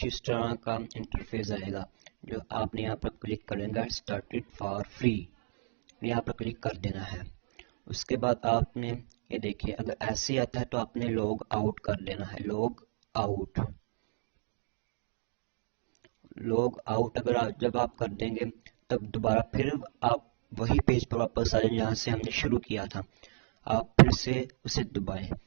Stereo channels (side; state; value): left; silent; digital silence